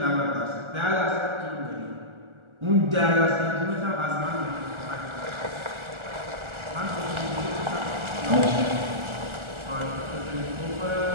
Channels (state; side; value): late; left; 1.4 ms